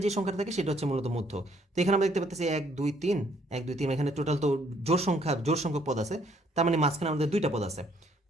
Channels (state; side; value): normal; both; correlation 0.66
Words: যে সংখ্যাটা থাকে সেটা হচ্ছে মূলত মধ্যক। তো এখানে আমরা দেখতে পাচ্ছি 1, 2, 3, 1, 2, 3, এখানে টোটাল তো জোড় সংখ্যক পদ আছে, তার মানে মাঝখানে আমাদের 2টা পদ আছে।